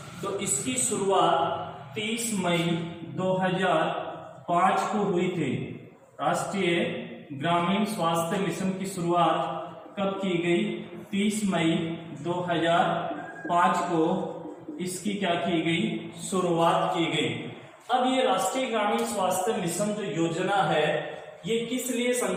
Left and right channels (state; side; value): identical; both; correlation 1.00